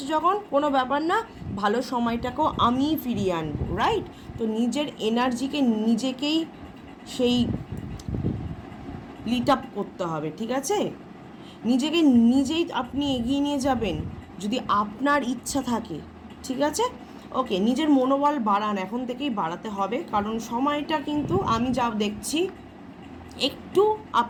যখন, কোনো ব্যাপার না, ভালো সময়টাকেও আমিই ফিরিয়ে আনবো, রাইট? তো নিজের এনার্জিকে নিজেকেই সেই লিট আপ করতে হবে, ঠিক আছে? নিজেকে নিজেই আপনি এগিয়ে নিয়ে যাবেন যদি আপনার ইচ্ছা থাকে, ঠিক আছে? ওকে, নিজের মনোবল বাড়ান, এখন থেকেই বাড়াতে হবে, কারণ সময়টা কিন্তু আমি যা দেখছি একটু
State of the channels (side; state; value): both; identical; correlation 1.00